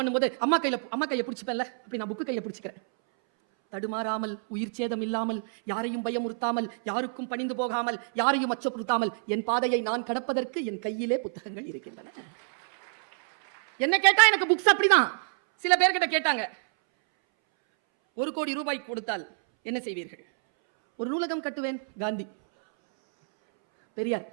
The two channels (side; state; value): left; silent; 60 dB below the other